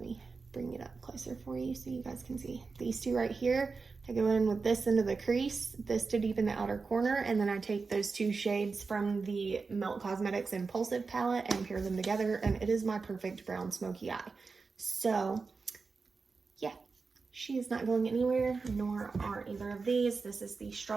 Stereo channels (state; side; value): quieter; left; 4.5 dB